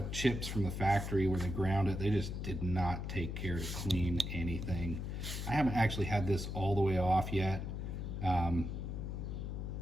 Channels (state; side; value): noise; left; hum, 4 dB below the sound